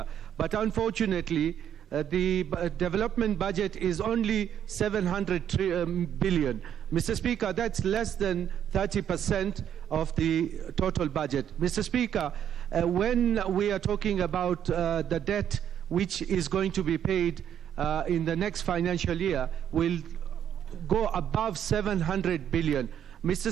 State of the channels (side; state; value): left; quieter; 9.5 dB